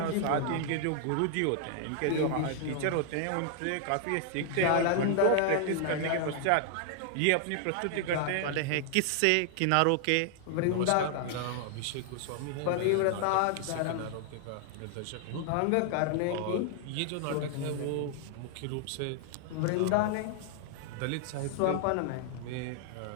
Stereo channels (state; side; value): different; both; correlation 0.00